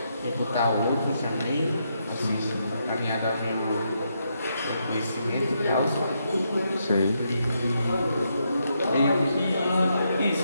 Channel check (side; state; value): both; inverted; correlation -0.79